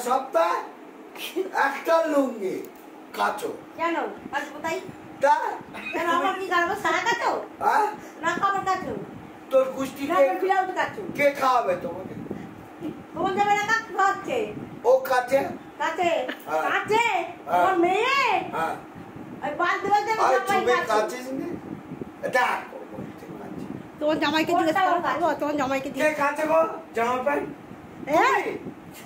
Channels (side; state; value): both; identical; correlation 1.00